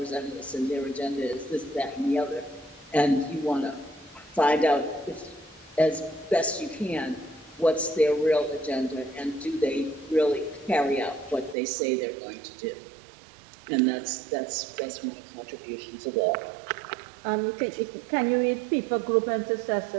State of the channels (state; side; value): drops out; left; at 11.6 s